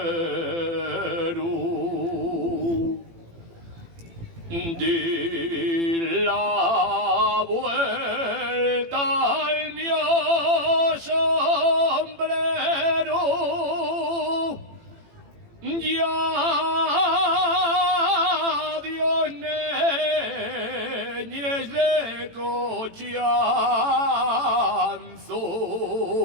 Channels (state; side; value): late; left; 18 ms